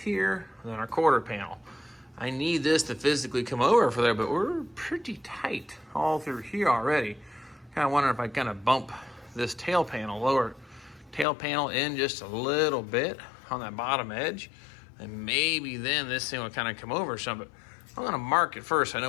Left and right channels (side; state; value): right; drops out; at 11.2 s